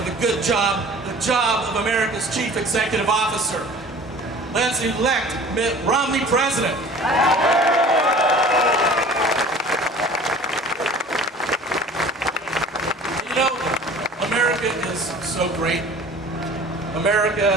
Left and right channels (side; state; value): both; normal; correlation 0.45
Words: a good job, the job of America's Chief Executive Officer. Let's elect Mitt Romney president. You know, America is so great.